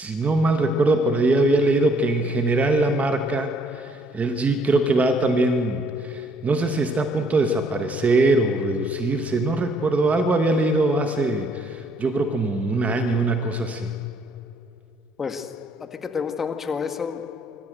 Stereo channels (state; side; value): normal; both; correlation 0.65